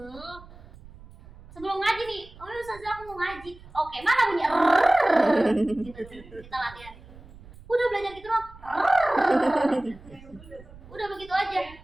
sebelum ngaji nih, oh ustazah aku mau ngaji. Oke, mana bunyi gitu, kita latihan. Udah belajar gitu loh. Udah begitu aja.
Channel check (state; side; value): noise; right; rumble, 20 dB below the sound